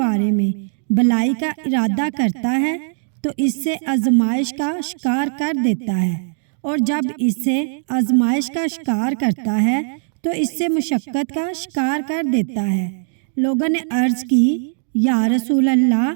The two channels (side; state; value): left; silent; digital silence